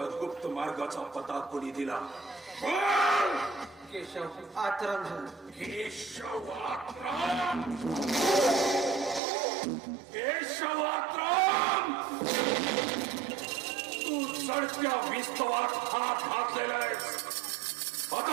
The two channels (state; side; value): drops out; left; at 9.2 s